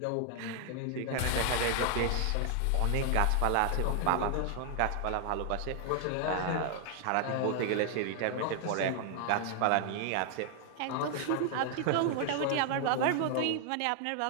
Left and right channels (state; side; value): different; both; correlation 0.00